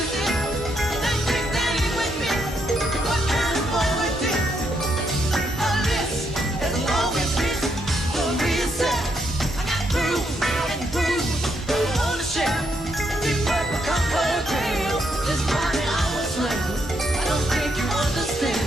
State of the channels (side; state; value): both; normal; correlation 0.77